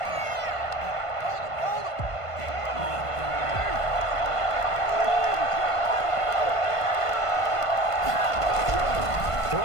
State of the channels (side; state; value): right; late; 1.5 ms